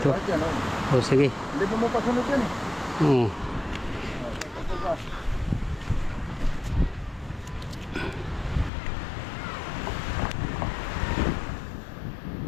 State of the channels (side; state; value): right; drops out; at 8.7 s